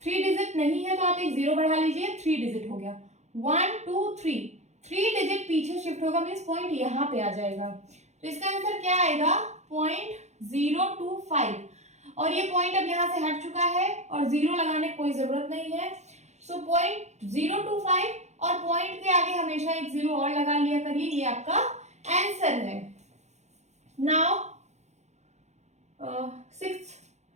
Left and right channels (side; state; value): left; late; 0.33 ms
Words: 3 डिजिट नहीं है तो आप एक 0 बढ़ा लीजिए, 3 डिजिट हो गया। 1 2 3, 3 डिजिट पीछे शिफ्ट होगा, मींस पॉइंट यहाँ पे आ जाएगा। तो इसका आंसर क्या आएगा? 0.025। और ये पॉइंट अब यहाँ से हट चुका है और 0 लगाने की कोई जरूरत नहीं है। सो 0.025 और पॉइंट के आगे हमेशा एक 0 और लगा लिया करिए, ये आपका आंसर है। Now